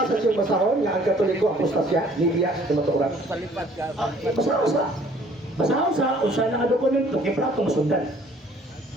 siyang basahon nga ang Katoliko apostasya, nibiya sa kamatuoran. Basaho sa usa na nga dokumento kay masundan.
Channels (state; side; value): normal; both; correlation 0.57